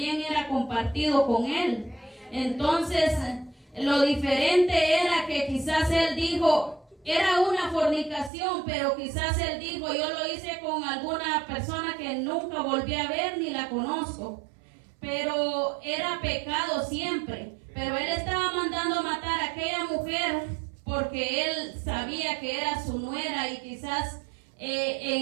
era compartido con él. Entonces, lo diferente era que quizás él dijo, era una fornicación, pero quizás él dijo: yo lo hice con alguna persona que nunca volví a ver ni la conozco. Pero era pecado siempre. Pero él estaba mandando a matar a aquella mujer porque él sabía que era su nuera, y quizás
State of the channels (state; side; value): drops out; left; at 8.3 s